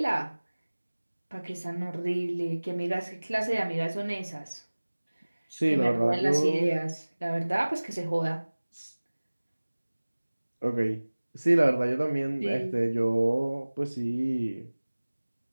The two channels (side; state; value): both; inverted; correlation -1.00